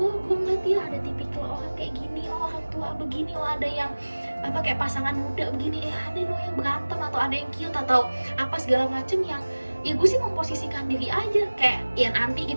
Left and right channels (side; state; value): both; inverted; correlation -1.00